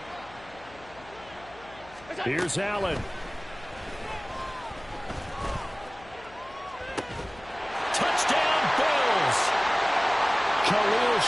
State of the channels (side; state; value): left; noise; hum, 22 dB below the sound